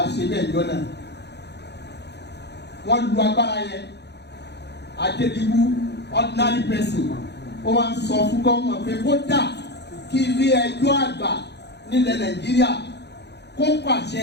ṣe ilé ìjọ náà. Wọ́n lu agbára yẹn. Adédìbú ordinary person ó máa ń sọ fún gómìnà pé kó dà kí ilé ẹjọ́ àgbà nílẹ̀ Nàìjíríà kó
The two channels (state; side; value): late; right; 0.49 ms